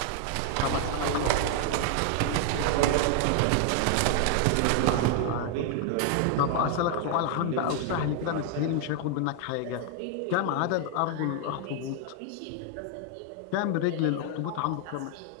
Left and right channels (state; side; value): different; both; correlation 0.00